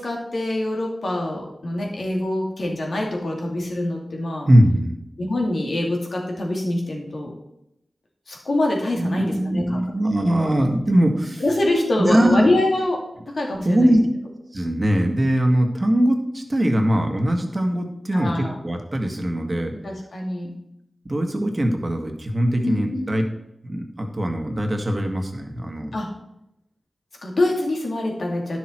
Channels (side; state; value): both; normal; correlation 0.96